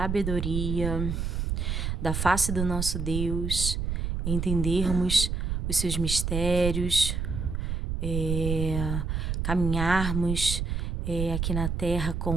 da face do nosso Deus, entendermos os seus mistérios, caminharmos aqui na terra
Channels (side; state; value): right; noise; rumble, 1 dB below the sound